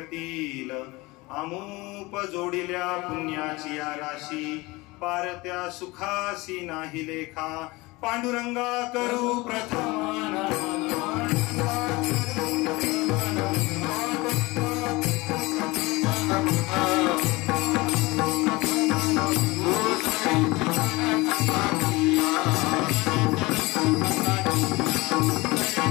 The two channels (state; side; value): quieter; right; 22.5 dB